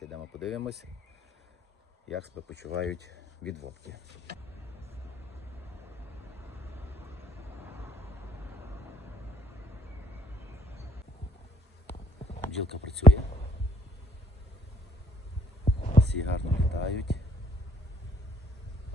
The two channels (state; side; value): normal; both; correlation 0.61